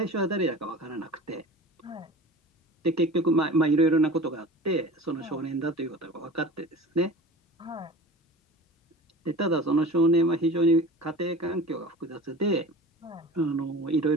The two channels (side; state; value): both; normal; correlation 0.38